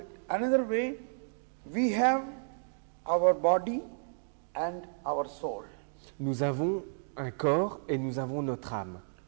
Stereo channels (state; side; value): silent; left; digital silence